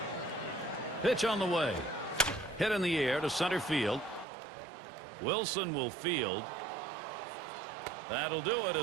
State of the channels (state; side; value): drops out; left; at 4.2 s